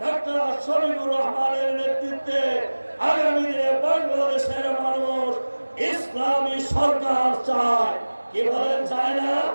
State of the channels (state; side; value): inverted; both; correlation -1.00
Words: ডক্টর শফিকুর রহমানের নেতৃত্বে আগামী দিনে বাংলাদেশের মানুষ ইসলামী সরকার চায়। কি বলেন, চায় না?